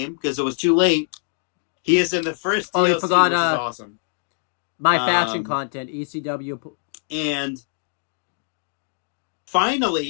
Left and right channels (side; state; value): right; silent; digital silence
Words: because it was too late, he is in the first DLC, you forgot, which is awesome. My faction content, ECW. And